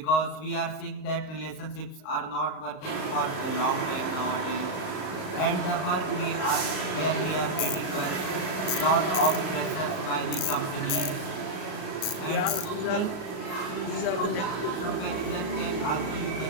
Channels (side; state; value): right; late; 38 ms